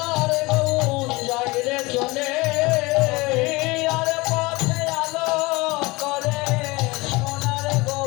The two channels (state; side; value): quieter; right; 23.2 dB